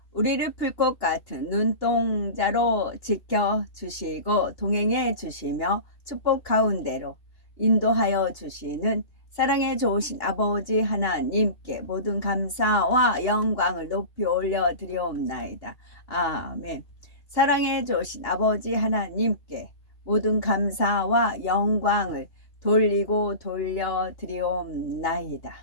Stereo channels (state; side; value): late; right; 2.9 ms